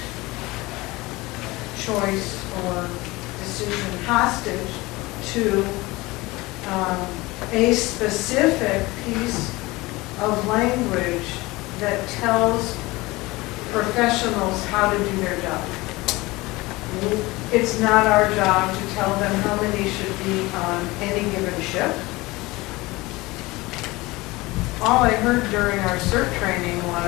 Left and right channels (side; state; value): right; quieter; 21.4 dB